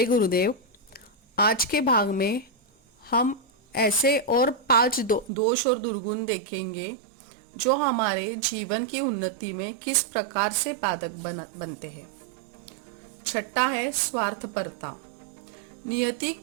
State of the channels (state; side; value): drops out; left; at 5.3 s